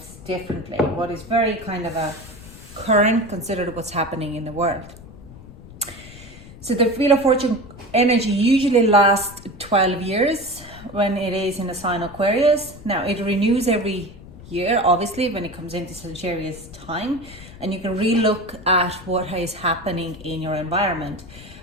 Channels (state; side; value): noise; left; rumble, 18 dB below the sound